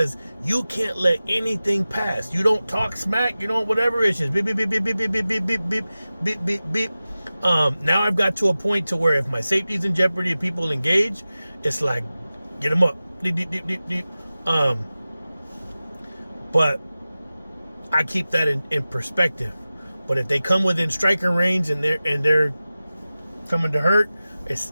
you can't let anything pass. You don't talk smack, you don't whatever. It's just beep beep beep beep beep beep beep beep beep beep beep beep. Now I've got to a point to where if my safety's in jeopardy and people engage, it's like, get them up, deep deep deep deep deep. But I keep that in perspective. But if they come within striking range and they're coming to hurt, it's,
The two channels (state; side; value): inverted; both; correlation -0.96